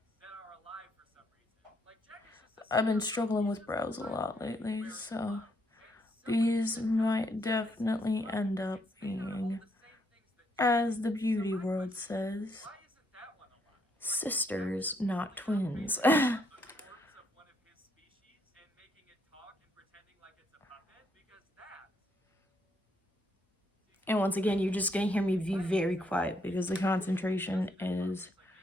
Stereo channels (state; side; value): normal; both; correlation 0.73